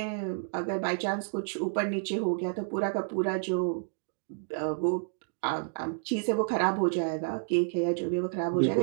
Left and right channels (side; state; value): left; silent; digital silence